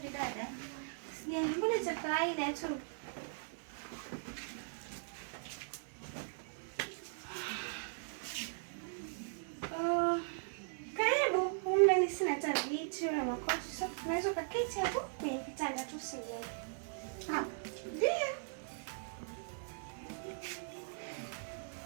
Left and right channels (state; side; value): silent; left; digital silence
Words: dada. Sijali, mbona cha kawaida tu. Karibu, humu sina hata viti wala makochi. So, unaweza kuketi hapo kwenye kitanda tu sijali. Ndio.